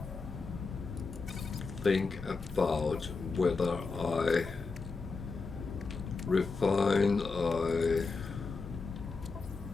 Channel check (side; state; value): right; quieter; 4.3 dB